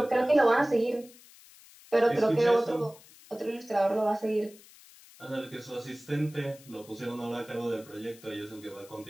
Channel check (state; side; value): noise; left; hiss, 23 dB below the sound